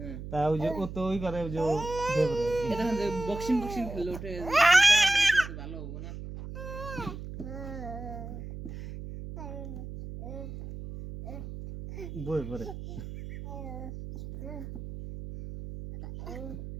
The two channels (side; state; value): right; noise; hum, 9 dB below the sound